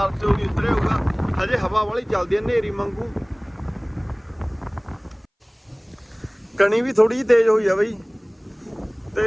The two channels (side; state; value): both; identical; correlation 1.00